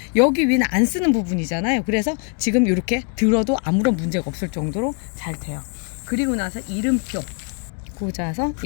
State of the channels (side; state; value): right; quieter; 37.7 dB